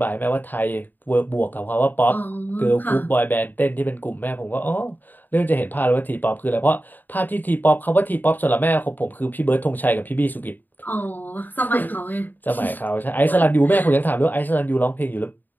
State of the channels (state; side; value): late; right; 0.088 ms